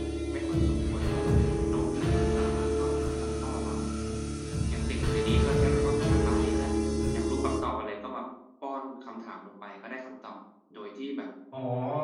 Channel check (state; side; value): identical; both; correlation 1.00